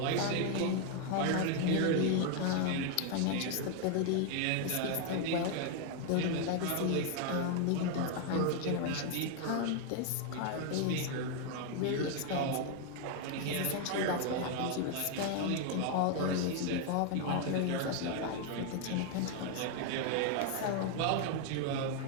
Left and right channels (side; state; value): both; different; correlation 0.01